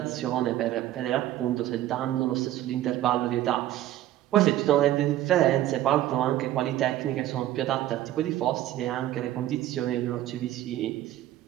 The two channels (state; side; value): quieter; left; 13.7 dB